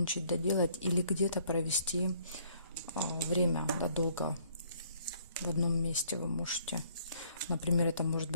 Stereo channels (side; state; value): both; inverted; correlation -0.62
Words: доделать или где-то провести время, да, долго в одном месте вы можете. Например, это может